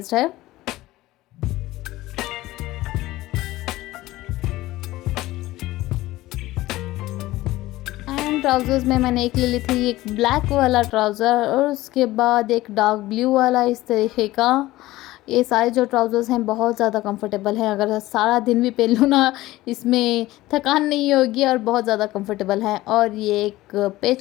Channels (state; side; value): quieter; right; 17.3 dB